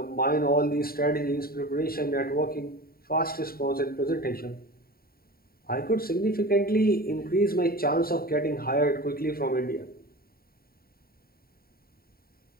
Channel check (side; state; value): right; late; 0.43 ms